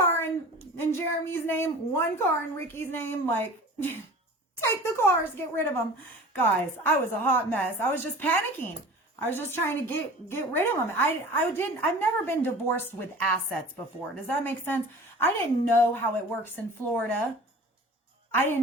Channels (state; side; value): normal; both; correlation 0.41